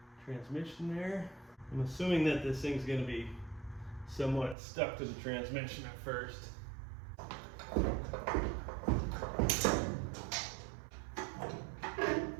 transmission there. I'm assuming that this thing's going to be somewhat stuck to the transmission at first.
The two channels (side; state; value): left; drops out; at 4.5 s